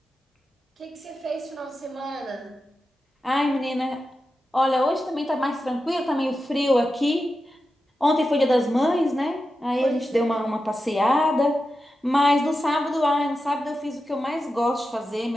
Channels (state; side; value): normal; both; correlation 0.91